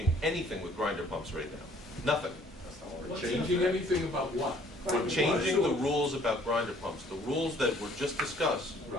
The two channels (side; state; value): both; normal; correlation 0.58